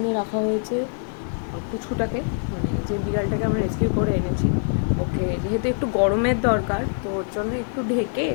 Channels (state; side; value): silent; right; 63 dB below the other